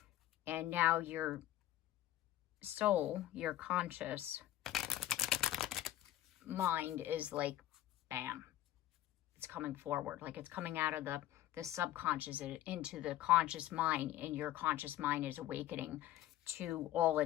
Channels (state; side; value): quieter; right; 13.8 dB